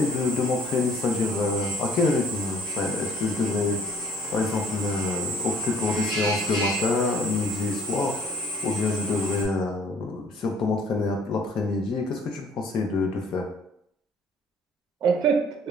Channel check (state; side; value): normal; both; correlation 0.57